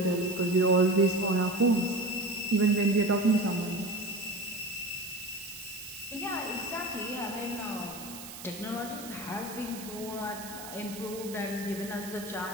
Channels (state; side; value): noise; right; hiss, 13 dB below the sound